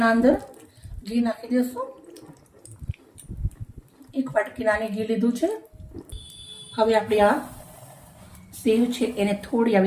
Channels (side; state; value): both; identical; correlation 1.00